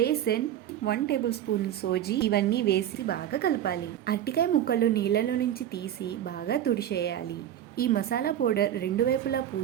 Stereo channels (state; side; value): quieter; left; 11.1 dB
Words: 1 టేబుల్ స్పూన్ సోజీ ఇవన్నీ వేసి బాగా కలపాలి. అరటికాయ ముక్కలు నీళ్ళలో నుంచి తీసి బాగా తుడిచేయాలి. ఈ మసాలా పౌడర్ రెండు వైపులా